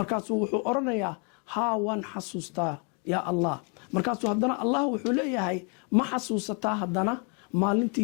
wuxuu odhanayaa haa, waan xasuustaa yaa allah. markaasuu haddana allah wuxuu leeyahay ma xasuusataa haddana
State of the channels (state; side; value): quieter; right; 36.1 dB